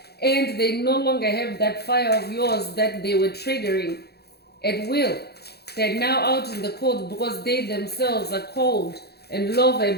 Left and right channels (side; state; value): right; late; 0.47 ms